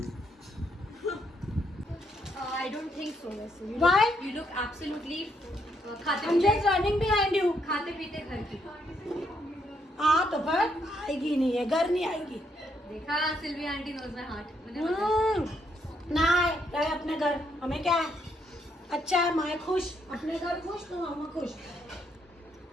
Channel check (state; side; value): normal; both; correlation 0.75